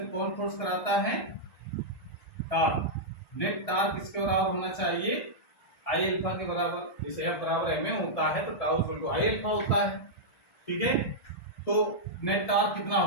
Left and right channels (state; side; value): late; right; 1.7 ms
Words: कौन फोर्स कराता है, टार्क। नेट टार्क किसके बराबर होना चाहिए, आई अल्फा के बराबर। जैसे एफ बराबर एम ए होता है तो tau equal to I alpha होता है, ठीक है। तो नेट टार्क कितना